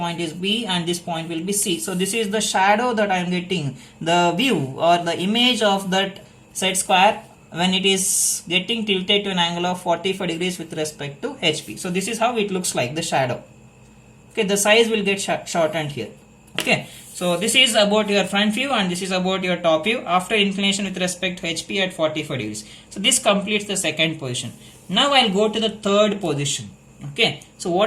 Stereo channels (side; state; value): both; identical; correlation 1.00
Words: is B, and this point will be C. So this is the shadow that I am getting, the view or the image of that set square when it is getting tilted to an angle of 45 degrees with respect to HP. So this is how it looks like, the shadow. Okay, the size will get shortened here. Okay, so this is about your front view and this is about your top view after inclination with respect to HP at 45 degrees. So this completes the second position. Now I'll go to the third position. Okay, so